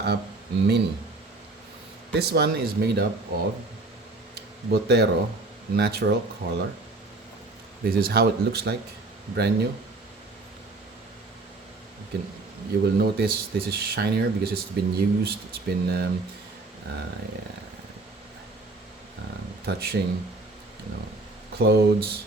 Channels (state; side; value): quieter; left; 3.2 dB